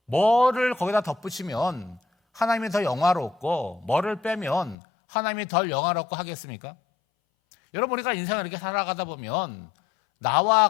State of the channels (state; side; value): drops out; right; at 4.8 s